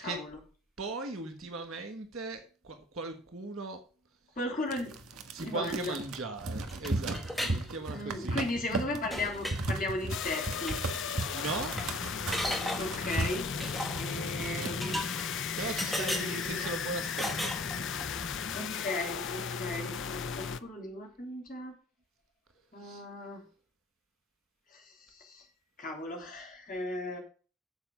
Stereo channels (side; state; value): both; normal; correlation 0.53